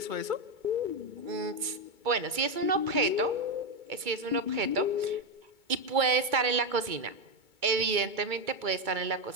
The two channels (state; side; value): late; left; 2.2 ms